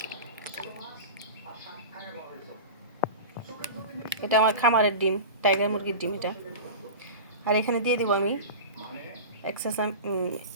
এটা আমার খামারের ডিম, টাইগার মুরগির ডিম এটা। আর এখানে দিয়ে দিব আমি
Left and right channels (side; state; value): both; inverted; correlation -0.31